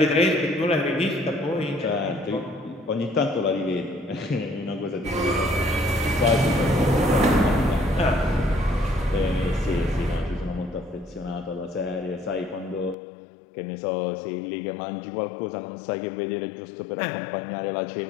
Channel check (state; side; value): drops out; right; at 13.0 s